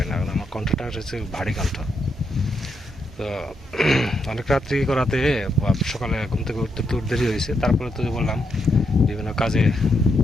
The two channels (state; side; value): normal; both; correlation 0.80